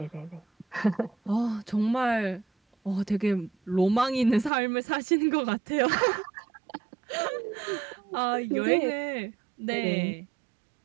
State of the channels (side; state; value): left; drops out; at 4.5 s